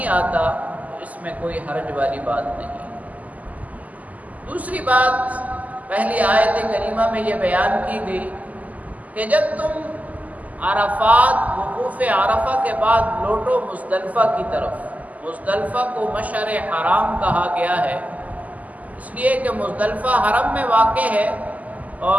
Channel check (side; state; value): left; late; 0.076 ms